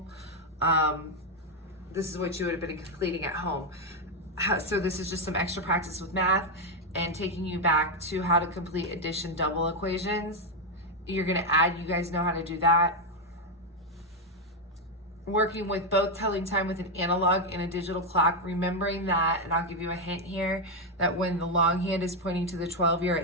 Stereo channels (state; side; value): normal; both; correlation 0.04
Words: This is what you would have been completing at home. So this is just some extra practice with math and taking you back to how to complete addition double equations. You're gonna add, you guys know how to do that. Working with both telling time with an analog and a digital clock, remembering that, and I'll give you a hint here, that when the long hand is pointing to the 12, you're